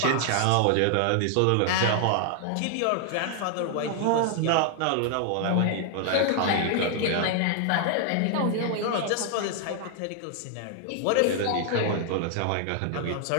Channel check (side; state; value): both; different; correlation 0.00